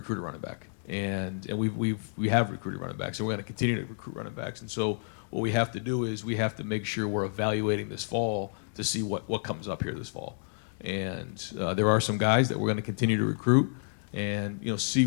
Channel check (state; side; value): silent; right; digital silence